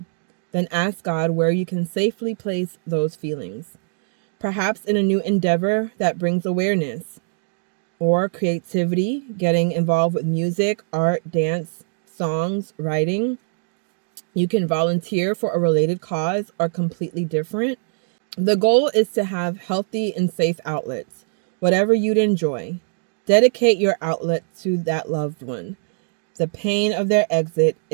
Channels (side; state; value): left; silent; digital silence